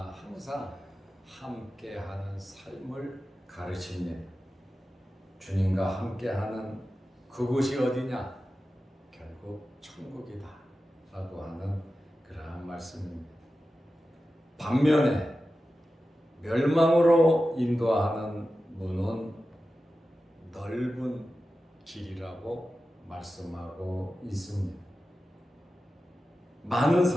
항상 함께하는 삶을 가르칩니다. 주님과 함께하는 그곳이 어디냐? 결국 천국이다 라고 하는 그러한 말씀입니다. 반면에 멸망으로 인도하는 문은 넓은 길이라고 말씀하고 있습니다. 많은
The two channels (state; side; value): normal; both; correlation 0.93